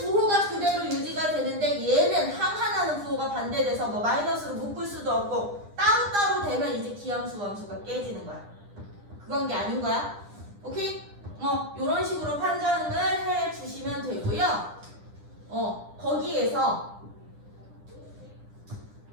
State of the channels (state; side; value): late; left; 9.9 ms